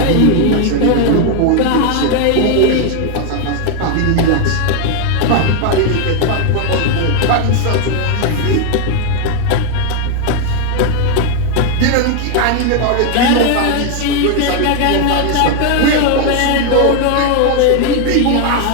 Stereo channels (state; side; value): different; both; correlation 0.01